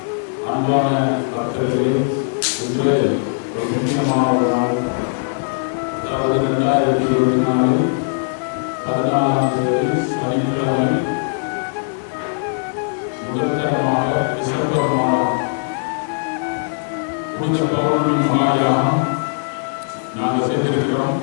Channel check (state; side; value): silent; right; digital silence